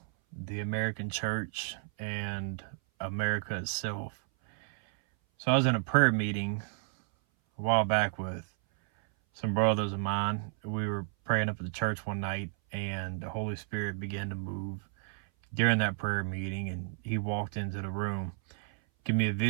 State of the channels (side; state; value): left; silent; 56 dB below the other